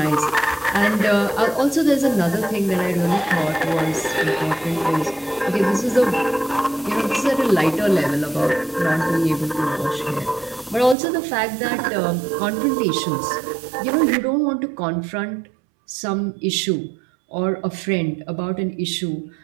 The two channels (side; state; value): left; drops out; at 11.0 s